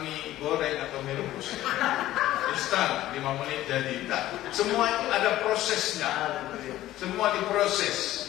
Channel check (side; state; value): right; quieter; 14.7 dB